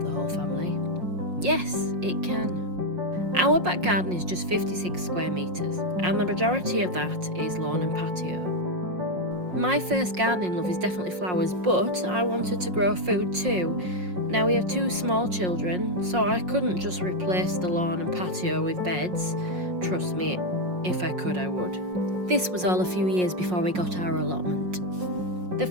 the whole family? Yes, it can. Our back garden is just 56 square metres, and the majority of that is lawn and patio. My first gardening love is definitely flowers, but I wanted to grow food too. Now we have two small children, so I couldn't just replace the lawn and patio with beds. Trust me, if I could, I would. This was all a few years before we got our allotment. The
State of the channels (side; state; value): left; late; 5.5 ms